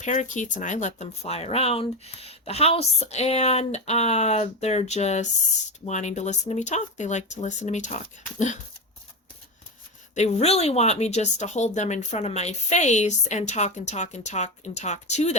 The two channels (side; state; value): both; normal; correlation 0.16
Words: and I let them fly around the house, and they're just wanting to listen to me talk. They like to listen to me talk. They really want me just to hold them in front of my face and talk and talk and talk and talk to